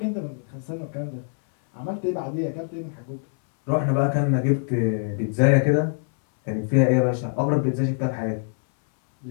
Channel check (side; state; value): right; silent; 60 dB below the other